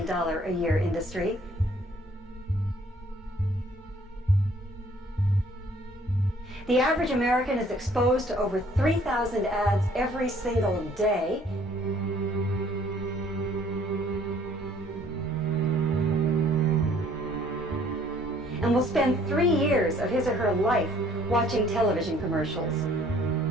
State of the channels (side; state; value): both; normal; correlation 0.59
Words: a year industry. The average American is exposed to over 3,000 ads every single day. And will spend 3 years of his or her life watching television commercials.